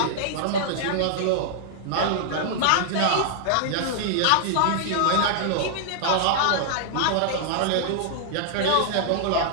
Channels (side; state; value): both; different; correlation -0.01